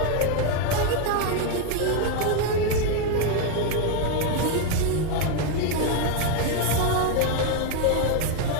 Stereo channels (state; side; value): different; both; correlation 0.01